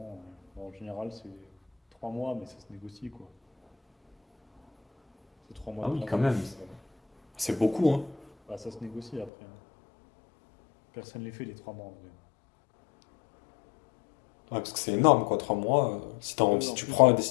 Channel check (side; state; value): right; drops out; at 9.3 s